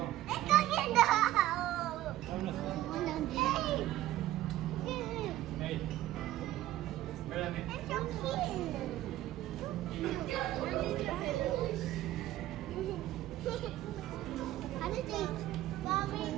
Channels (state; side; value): quieter; left; 14.5 dB